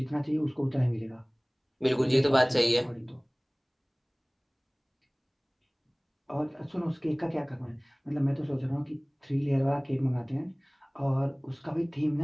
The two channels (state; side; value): identical; both; correlation 1.00